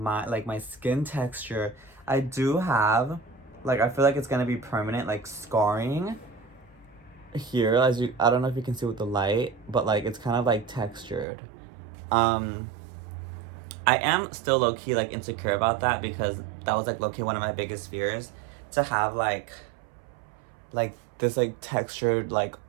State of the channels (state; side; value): drops out; left; at 11.2 s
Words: skin texture. I do have, like, I feel like it's gonna be permanent, like scarring here, I don't know if you can see with the light, but like it's kind of like textured. I am still low-key like insecure about that because that was like low-key one of my biggest fears, to have like this like textured like